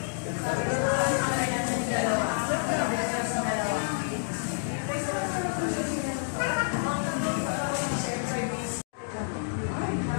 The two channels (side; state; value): right; silent; digital silence